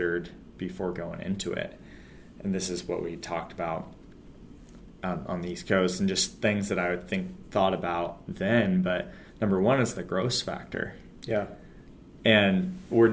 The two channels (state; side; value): identical; both; correlation 1.00